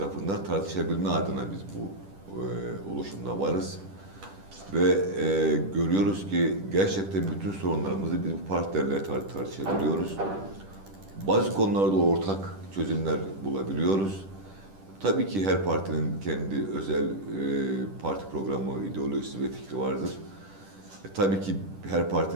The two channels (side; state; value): left; late; 10 ms